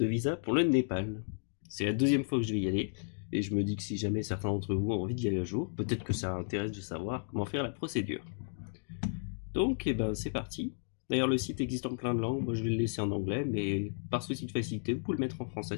visa pour le Népal. C'est la deuxième fois que je vais y aller, et je me dis que si jamais certains d'entre vous ont envie d'y aller un jour, peut-être que ça intéresse de savoir comment faire la procédure. Donc, c'est parti. D'ailleurs, le site existe en plein de langues, moi je vais le laisser en anglais, mais par souci de facilité, vous pouvez le mettre en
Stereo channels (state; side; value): silent; right; digital silence